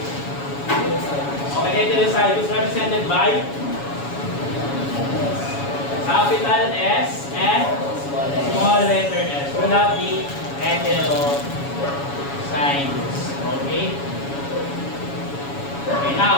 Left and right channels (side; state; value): right; late; 7.1 ms